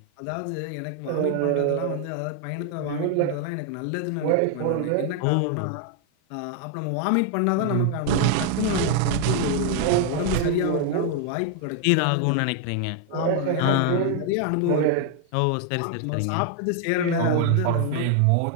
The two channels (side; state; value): both; different; correlation 0.00